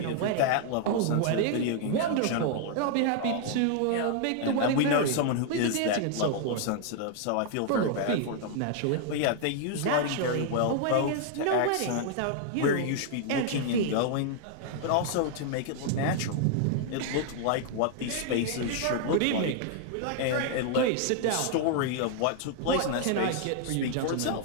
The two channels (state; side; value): different; both; correlation 0.00